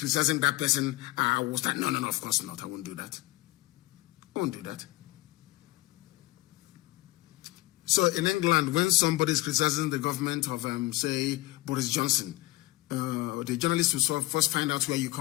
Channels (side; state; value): right; quieter; 19.9 dB